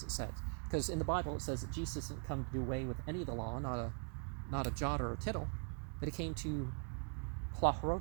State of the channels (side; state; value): left; quieter; 39.4 dB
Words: it says. Because in the Bible it says that Jesus didn't come to do away with any of the law, not a jot or a tittle, but he came to